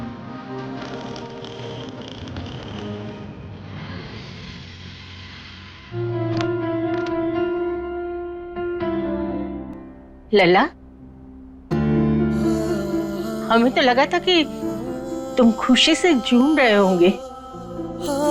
लला, हमें तो लगा था कि तुम खुशी से झूम रहे होंगे।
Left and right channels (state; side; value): identical; both; correlation 1.00